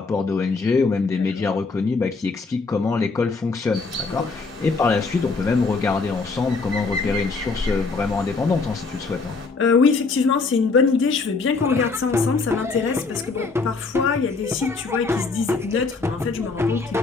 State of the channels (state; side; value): quieter; right; 4.2 dB